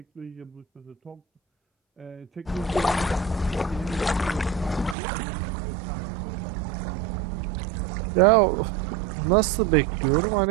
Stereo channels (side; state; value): left; drops out; at 5.0 s